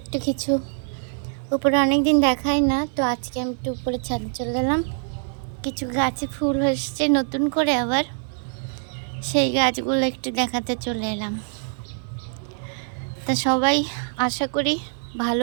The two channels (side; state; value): left; silent; 63 dB below the other